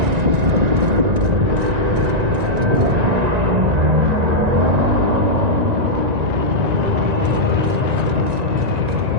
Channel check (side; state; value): left; late; 1.9 ms